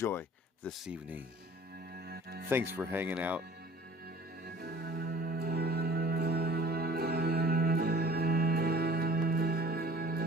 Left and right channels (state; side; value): normal; both; correlation 0.49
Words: this evening. Thanks for hanging out.